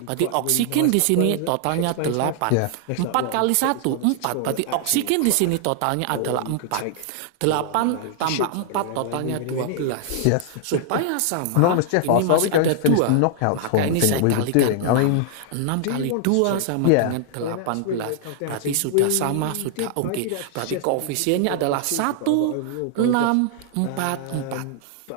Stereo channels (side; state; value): both; different; correlation 0.00